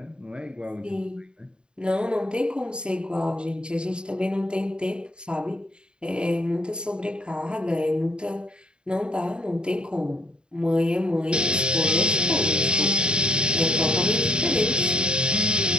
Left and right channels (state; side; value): late; left; 0.051 ms